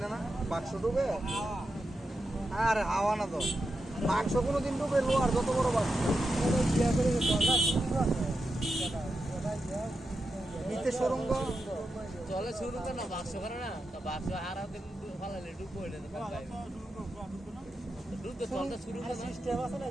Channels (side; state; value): both; normal; correlation 0.88